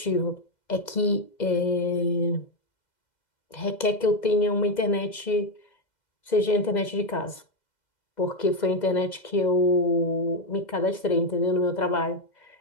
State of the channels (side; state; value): right; late; 2.0 ms